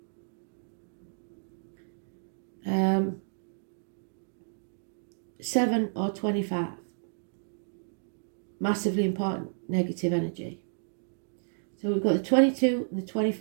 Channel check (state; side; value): silent; left; digital silence